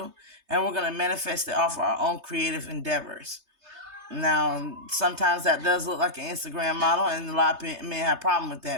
and we're going to manifest it off our own creative endeavors. Now, sometimes that does look like an Instagram model, and a lot of men have a problem with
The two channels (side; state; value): left; late; 3.3 ms